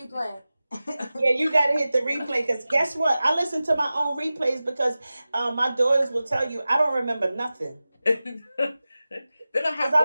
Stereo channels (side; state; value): both; inverted; correlation -0.95